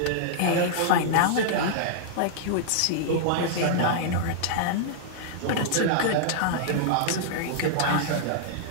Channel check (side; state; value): both; different; correlation -0.01